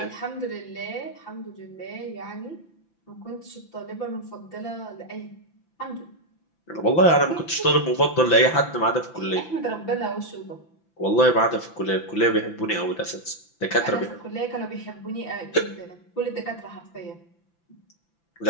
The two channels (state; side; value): late; right; 5.9 ms